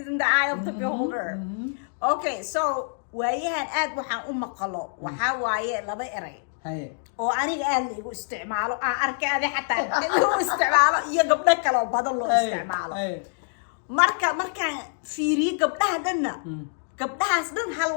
is in the eye of the beholder. Okay, so waayahan aad waxaan u maqalo waxaa waaye laba eray Haye. oo aniga aad liigu isticmaalo aan arkay adi xataa liigu isticmaalo iyo gabdho kale oo badan loo isticmaalo markaan fiiriyo gabdhaha dhanna gabdhahaas dhan hal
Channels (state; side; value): silent; right; digital silence